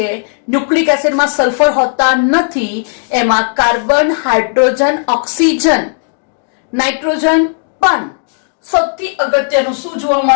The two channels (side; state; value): right; silent; digital silence